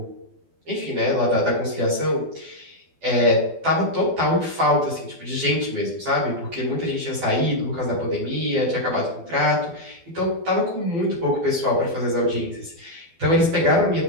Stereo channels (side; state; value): left; late; 12 ms